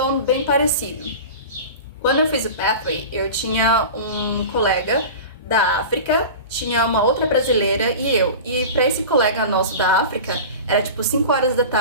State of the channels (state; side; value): inverted; both; correlation -0.32